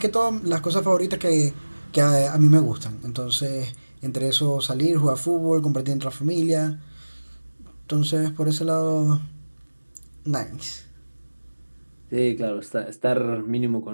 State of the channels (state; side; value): inverted; both; correlation -1.00